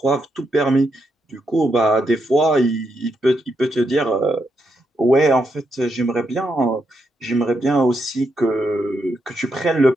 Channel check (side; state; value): both; normal; correlation 0.81